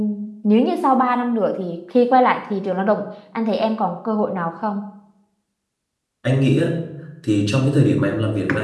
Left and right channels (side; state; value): both; identical; correlation 1.00